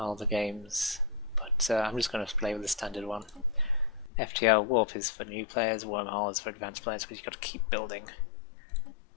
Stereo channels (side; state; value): right; drops out; at 4.1 s